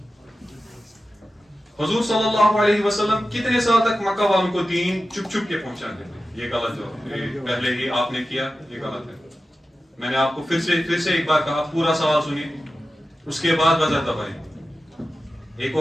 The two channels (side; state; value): both; normal; correlation 0.93